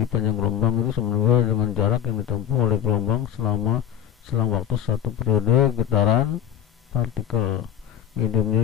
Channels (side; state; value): right; quieter; 10.3 dB